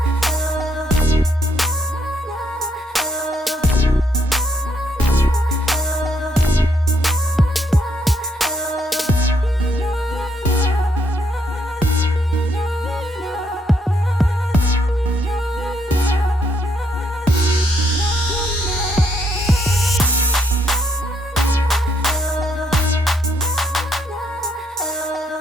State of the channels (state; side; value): normal; both; correlation 0.73